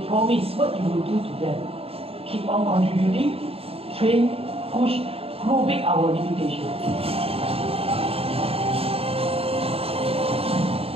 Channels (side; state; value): left; late; 0.28 ms